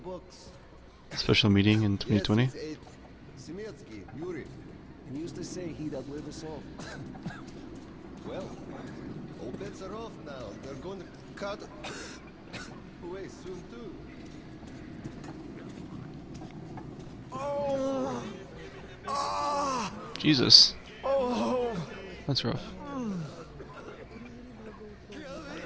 books. special meeting in 2020. Yes, it's eight. Semetsky, Yuri. He used to say he'd outlive us all. Well, all bets are off now. They're going to cut away soon too. Oh! Ah! Jesus, Oh! that's rough.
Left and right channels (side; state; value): both; identical; correlation 1.00